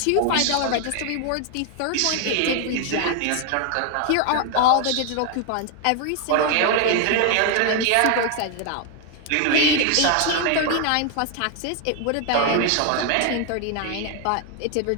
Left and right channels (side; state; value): both; different; correlation 0.01